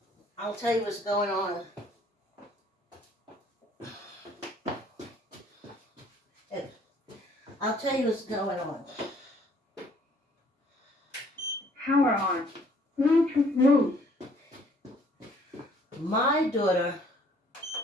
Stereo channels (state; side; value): normal; both; correlation 0.60